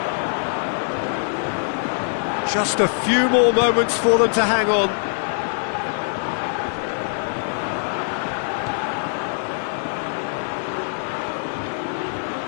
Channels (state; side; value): silent; right; 64 dB below the other